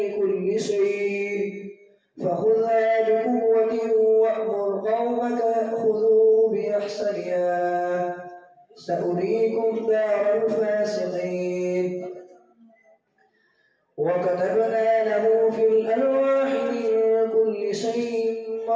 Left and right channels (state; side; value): identical; both; correlation 1.00